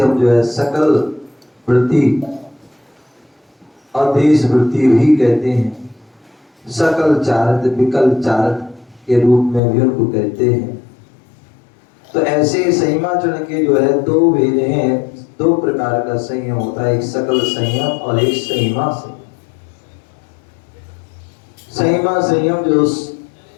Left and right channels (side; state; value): right; drops out; at 9.6 s